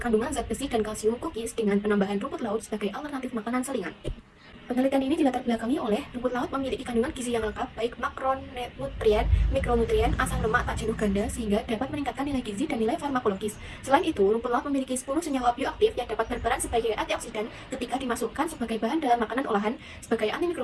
zat besi dan kalsium cookies dengan penambahan rumput laut sebagai alternatif makanan selingan. Penelitian ini dilatar belakangi oleh rumput laut memiliki kandungan gizi yang lengkap, baik makronutrien, mikronutrien, asam lemak tak jenuh ganda, sehingga dapat meningkatkan nilai gizi dan nilai farmakologis. Selain itu, rumput laut memiliki 10 senyawa bioaktif yang dapat berperan sebagai antioksidan ketika dimasukkan sebagai bahan dalam makanan olahan, sebagai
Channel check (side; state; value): both; identical; correlation 1.00